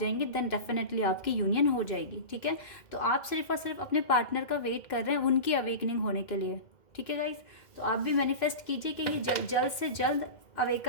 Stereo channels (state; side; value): late; right; 2.1 ms